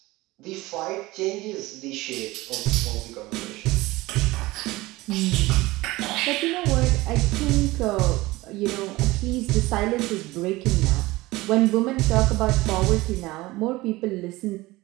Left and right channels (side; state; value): left; quieter; 19.9 dB